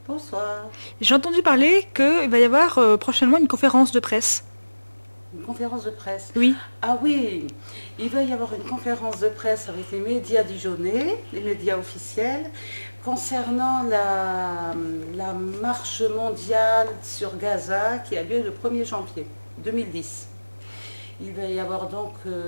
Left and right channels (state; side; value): inverted; both; correlation -1.00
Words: Bonsoir. j'ai entendu parler qu'il va y avoir prochainement une conférence de presse. Une conférence de presse. Oui. Ah oui, il va y avoir une conférence de presse avec les médias dijonnais, les médias officiels, concernant la marche mondiale sur Gaza qui a lieu le 1er janvier 2010. Il va y avoir donc